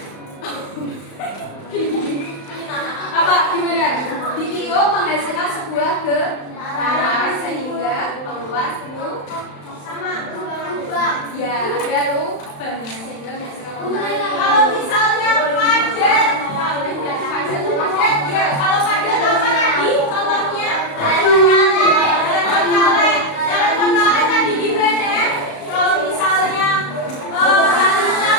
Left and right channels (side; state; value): right; late; 35 ms